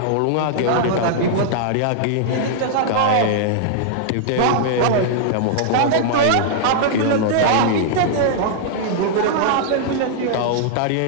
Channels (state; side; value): different; both; correlation -0.01